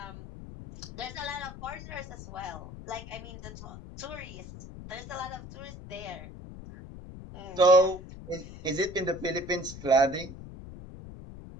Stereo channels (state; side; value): noise; left; rumble, 13 dB below the sound